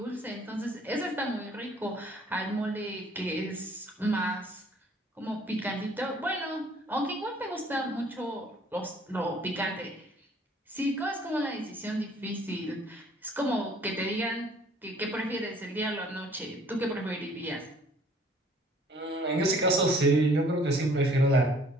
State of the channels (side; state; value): both; normal; correlation 0.57